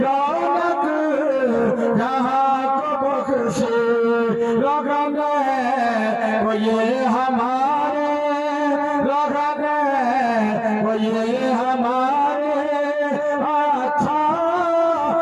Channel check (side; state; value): both; identical; correlation 1.00